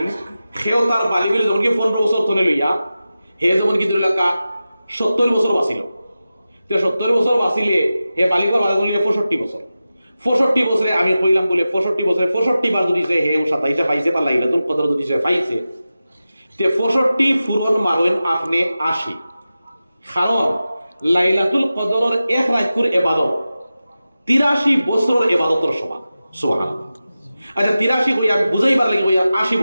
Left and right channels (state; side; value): inverted; both; correlation -0.94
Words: সেও তার বালিগুলি যখন কি 15 বছর ধরে লইয়া হে যেমন কি ধরিলাকা 70 বছর বাঁচিল 70 বছর বাঁচিলে হে বালিকর বালিগুলি 65 বছর 65 বছরে আমি কইলাম বলে 65 বছরে 65 বার যদি সে হে 27 পাইছে বা লাইলাতুল কদর যদি সে পাইছে তে 65 ফুরন মারইন আপনি 80 কারণ লাইলাতুল কদরের এক রাতকুর ইবাদত 83 বছরের ইবাদতের সমান সুবহানাল্লাহ। আচ্ছা 83 কইয়া বুঝাইবার লাগি কইয়া 80